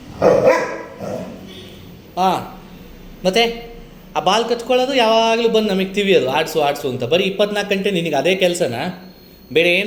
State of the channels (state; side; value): identical; both; correlation 1.00